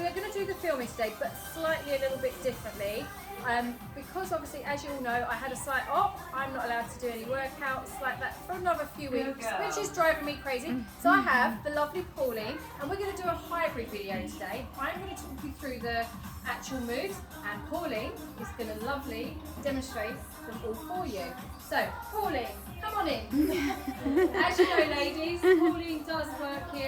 going to do the filming today, but slightly a little bit differently. Because obviously, as you all know, I had a slight op. I'm not allowed to do any workouts like that for another few weeks, which is driving me crazy. So I have the lovely Pauline, and we're going to do a hybrid video today. I'm going to talk you through the actual moves, and Pauline is going to lovely demonstrate them all for you. So Pauline, come on in. As you know, ladies, Pauline does work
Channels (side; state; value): both; identical; correlation 1.00